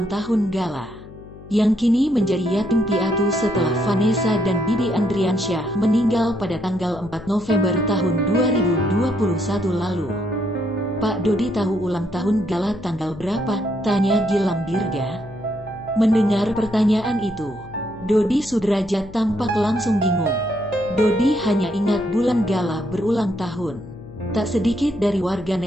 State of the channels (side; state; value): left; noise; hum, 18 dB below the sound